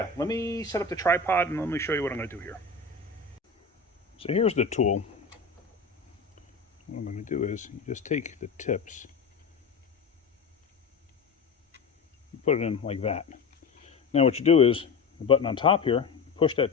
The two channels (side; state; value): right; quieter; 4.7 dB